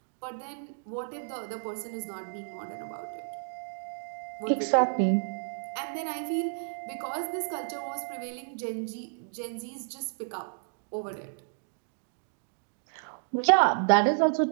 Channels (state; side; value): silent; left; digital silence